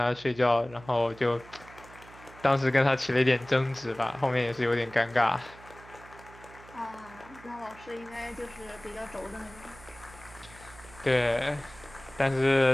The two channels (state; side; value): noise; right; hum, 21 dB below the sound